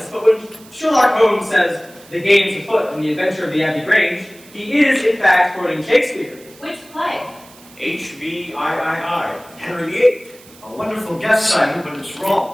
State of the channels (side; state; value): right; noise; hiss, 23 dB below the sound